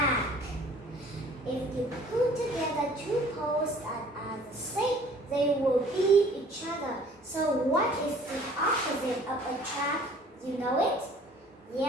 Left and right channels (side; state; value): both; normal; correlation 0.53